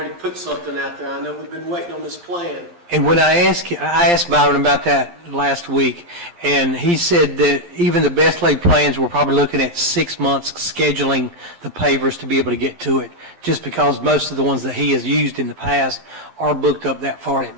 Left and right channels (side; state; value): left; late; 11 ms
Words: put something out there. I know we've been waiting on this plan. And when I asked Byron about that last week, and he said that even the best laid plans, we're probably looking at 6 months scheduling the pavers to be able to get to it, just because most of the ones that he has used in the past are booked up that far in